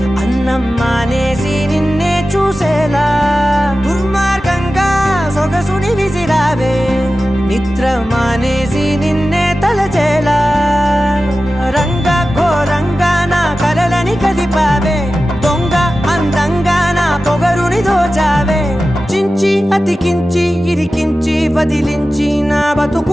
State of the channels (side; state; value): both; normal; correlation 0.94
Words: అన్నం మానేసి నిన్నే చూసేలా దుర్మార్గంగా సొగసుని విసిరావే నిద్ర మానేసి నిన్నే తలచేలా రంగా ఘోరంగా నా కలలని కదిపావే దొంగ అందంగా నా పొగరుని దోచావే చించి అతికించి ఇరికించి వదిలించి నా